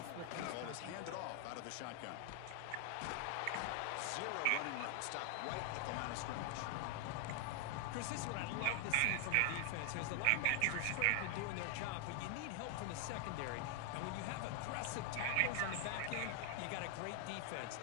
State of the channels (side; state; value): both; different; correlation 0.00